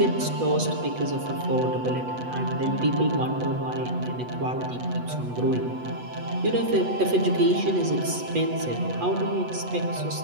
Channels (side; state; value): left; late; 8.1 ms